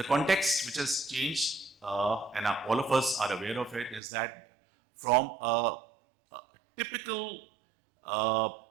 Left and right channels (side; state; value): left; drops out; at 4.0 s